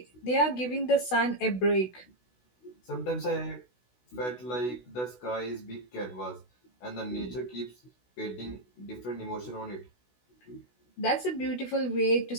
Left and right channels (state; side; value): late; right; 16 ms